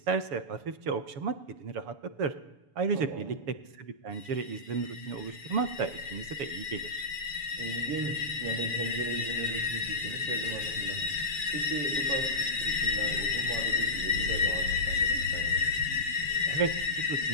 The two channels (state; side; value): late; left; 7.0 ms